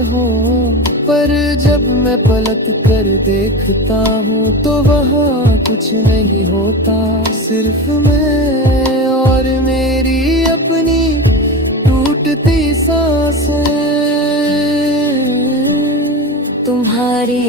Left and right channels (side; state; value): both; normal; correlation 0.25